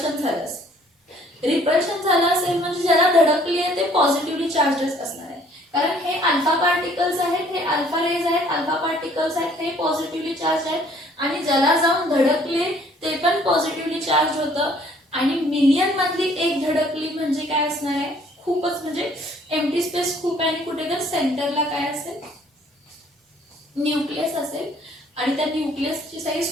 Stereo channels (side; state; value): both; normal; correlation 0.59